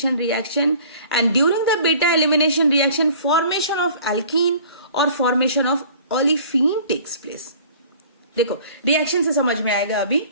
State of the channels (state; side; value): inverted; both; correlation -0.48